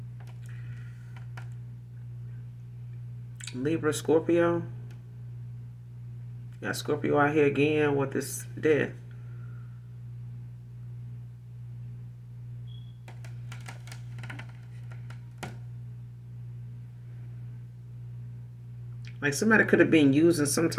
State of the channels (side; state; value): both; identical; correlation 1.00